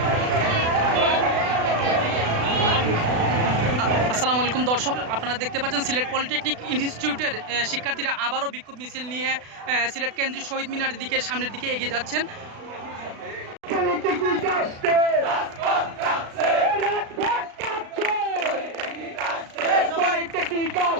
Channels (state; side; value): late; left; 36 ms